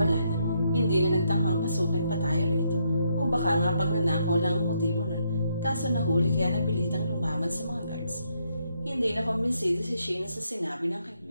na. Hindi na nagtanghang pasukin pa tayo rito. O baka nga pagnanakaw lang ang motibo nun. Kaso nahuli kaya napilitang lumaban sa mga guards. Hindi na kumbinsido si Sheena sa sinabi ng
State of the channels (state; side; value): inverted; both; correlation -0.75